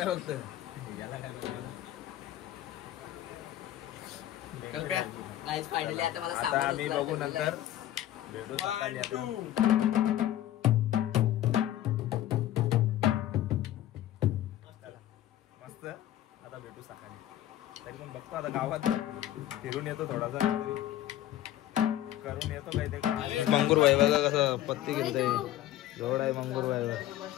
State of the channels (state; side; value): quieter; right; 13.0 dB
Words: फक्त. फायनली आता मला आता सामान आम्ही उचलायचं बघू आहे. नंतर भेटू सकाळी आता. मस्त आता भेटू सकाळी. तरी पण बघतो आता गावात फिरून येतो थोडासा करून येतो काहीतरी. मंगूरबाई बघा कसं पत्ती घेतोय. जोड आहे मंगूरबाई.